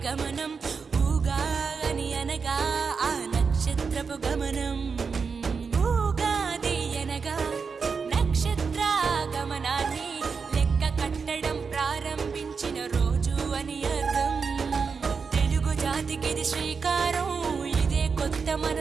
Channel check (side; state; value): left; quieter; 5.4 dB